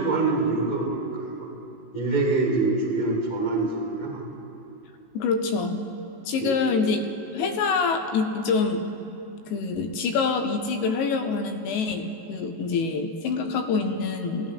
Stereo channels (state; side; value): late; right; 19 ms